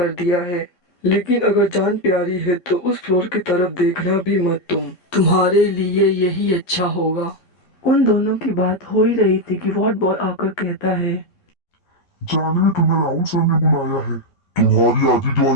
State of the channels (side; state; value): right; late; 11 ms